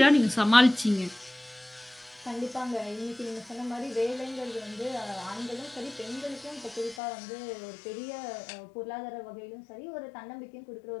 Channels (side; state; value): right; drops out; at 7.0 s